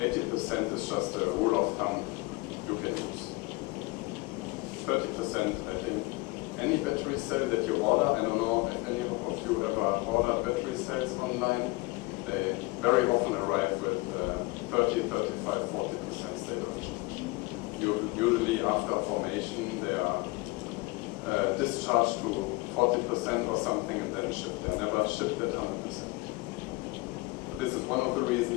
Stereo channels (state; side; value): quieter; right; 23.5 dB